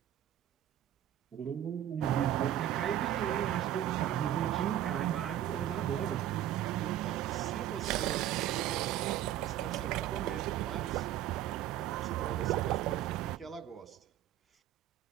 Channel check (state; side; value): quieter; left; 12.0 dB